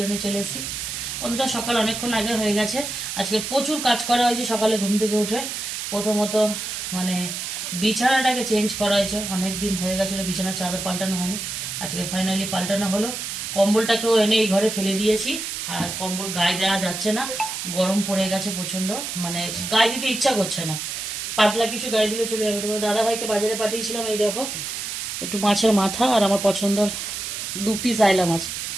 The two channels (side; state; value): right; noise; hiss, 5 dB below the sound